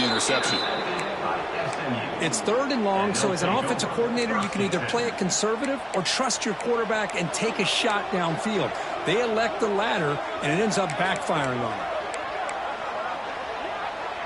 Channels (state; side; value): identical; both; correlation 1.00